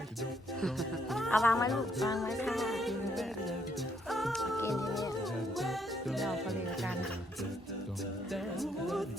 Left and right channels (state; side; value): normal; both; correlation 0.71